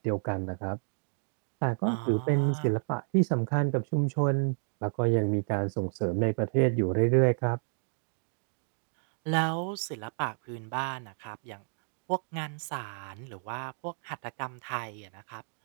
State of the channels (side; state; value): left; silent; 57 dB below the other